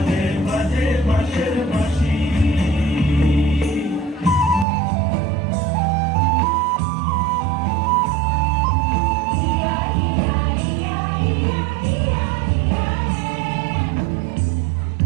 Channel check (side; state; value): left; drops out; at 4.7 s